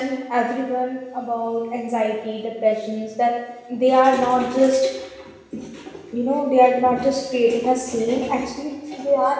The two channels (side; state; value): both; identical; correlation 1.00